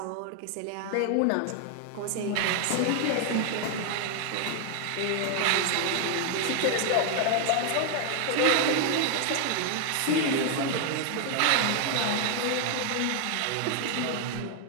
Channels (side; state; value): both; different; correlation 0.00